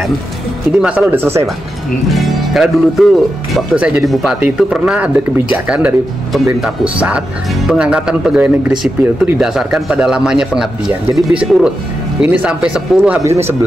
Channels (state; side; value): normal; both; correlation 0.88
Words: ini masalah udah selesai Pak. Karena dulu tuh waktu saya jadi bupati itu pernah ada kebijakan dari pemerintah pusat, pengangkatan pegawai negeri sipil itu didasarkan pada lamanya pengabdian. Jadi bisa urut, ini sampai 10, habis ini